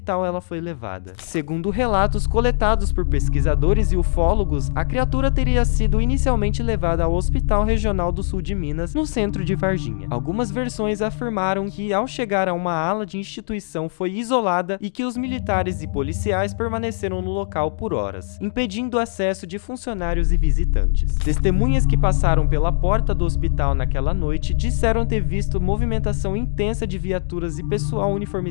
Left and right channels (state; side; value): silent; right; digital silence